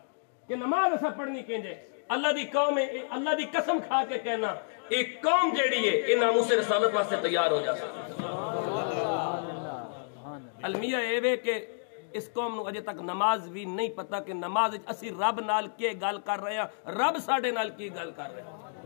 کہ نماز ایسا پڑھنی کینجے اللہ دی قوم ہے اللہ دی قسم کھا کے کہنا ایک قوم جیڑی ہے یہ ناموس رسالت واسطے تیار ہو جا المیہ ایوے کہ اس قوم نو اجے تک نماز بھی نہیں پتا کہ نماز اسی رب نال کے گل کر رہے ہیں رب ساڈے نال کی گل کر رہے ہیں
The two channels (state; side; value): silent; right; digital silence